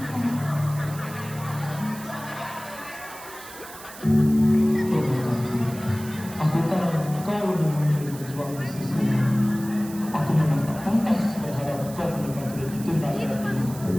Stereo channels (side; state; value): right; noise; hiss, 16 dB below the sound